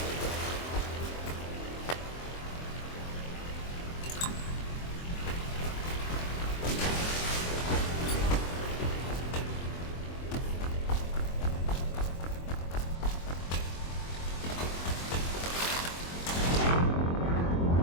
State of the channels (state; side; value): late; right; 23 ms